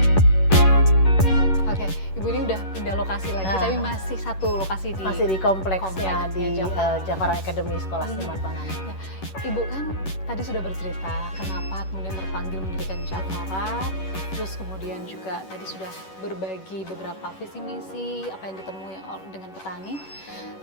Oke, Ibu ini udah pindah lokasi lagi, tapi masih satu lokasi di kompleksnya di Javara. Javara Academy Sekolah Seniman Pangan. Ya, Ibu kan tadi sudah bercerita kenapa kemudian terpanggil mendirikan Javara, terus kemudian juga tadi sudah berbagi beberapa visi misi apa yang ditemui dengan petani.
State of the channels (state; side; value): late; right; 11 ms